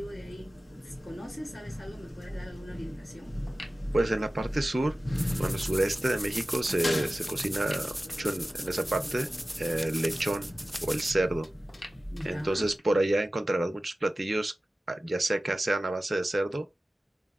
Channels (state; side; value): normal; both; correlation 0.96